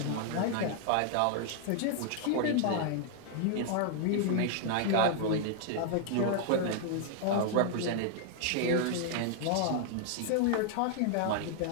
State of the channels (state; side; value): different; both; correlation -0.01